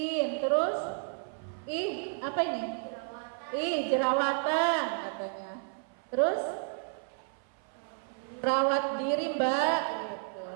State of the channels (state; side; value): silent; left; 57 dB below the other